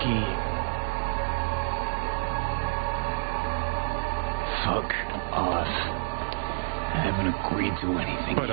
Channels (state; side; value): silent; left; 59 dB below the other